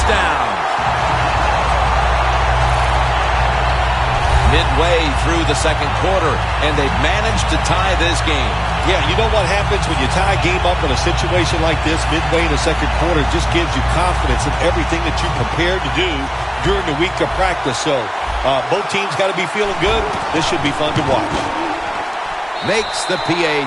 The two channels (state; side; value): identical; both; correlation 1.00